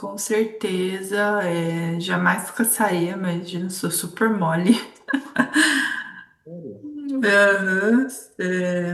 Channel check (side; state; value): both; identical; correlation 1.00